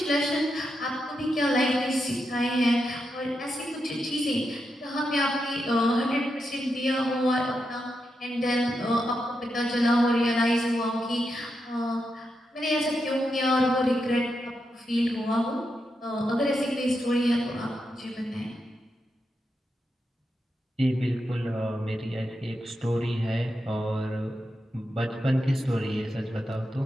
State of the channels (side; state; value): both; normal; correlation 0.86